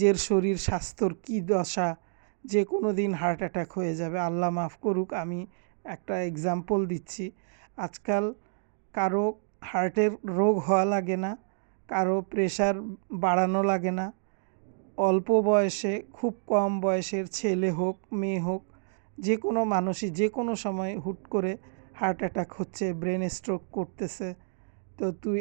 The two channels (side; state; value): left; silent; digital silence